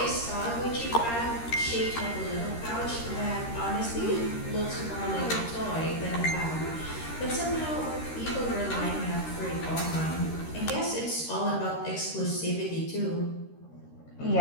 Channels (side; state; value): right; late; 13 ms